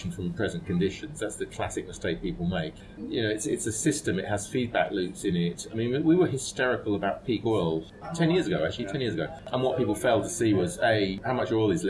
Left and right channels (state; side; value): identical; both; correlation 1.00